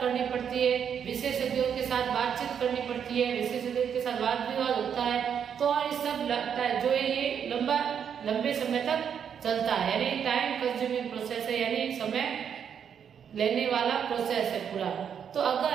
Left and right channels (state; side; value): quieter; left; 7.9 dB